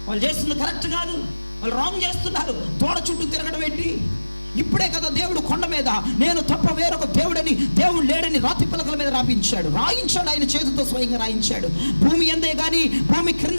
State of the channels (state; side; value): inverted; both; correlation -1.00